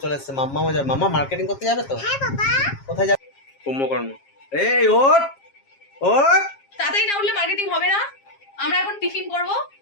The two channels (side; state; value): right; late; 7.4 ms